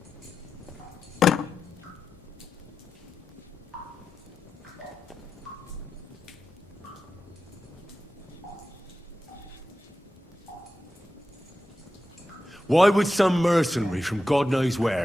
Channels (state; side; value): normal; both; correlation 0.92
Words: Why would some mercenary from God knows